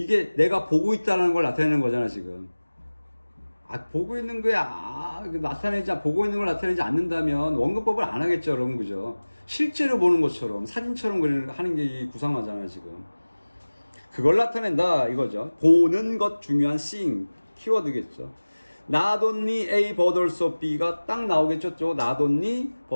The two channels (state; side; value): inverted; both; correlation -1.00